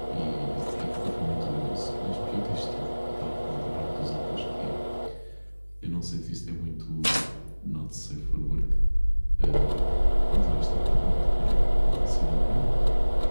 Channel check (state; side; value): inverted; both; correlation -1.00